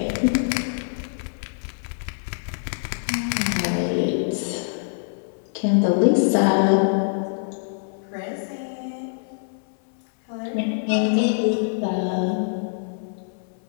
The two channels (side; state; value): right; silent; 62 dB below the other